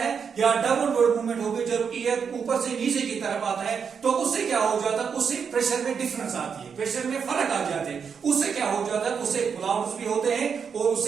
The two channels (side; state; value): left; quieter; 6.5 dB